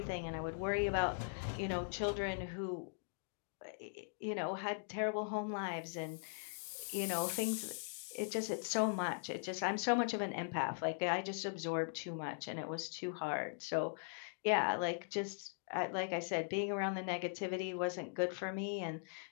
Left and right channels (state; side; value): silent; right; digital silence